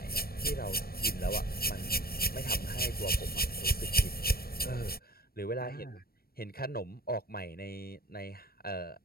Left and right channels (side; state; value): right; late; 0.44 ms